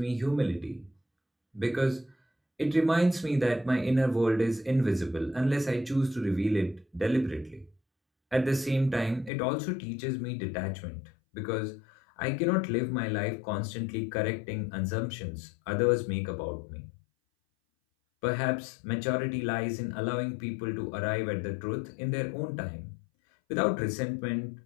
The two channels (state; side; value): drops out; right; at 9.3 s